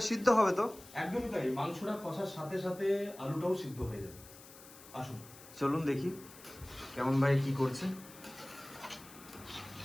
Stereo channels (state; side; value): noise; left; hiss, 19 dB below the sound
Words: সিদ্ধ হবে তো? একদমই তাই, মাংসটা কষার সাথে সাথে আলুটাও সিদ্ধ হয়ে যাবে। আসুন চলুন দেখি কেমন ভাই কি করছে।